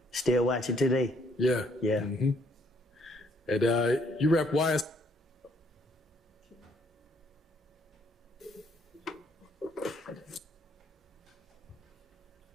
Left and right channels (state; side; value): normal; both; correlation 0.67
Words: Still watch it today. Yeah. Yeah. Mm-hmm. And you rep YS.